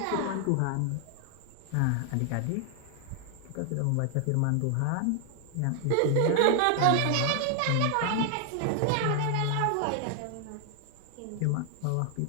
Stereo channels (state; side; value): different; both; correlation 0.00